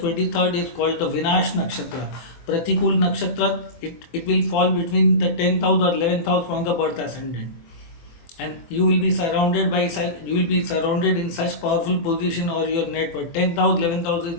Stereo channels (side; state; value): right; late; 24 ms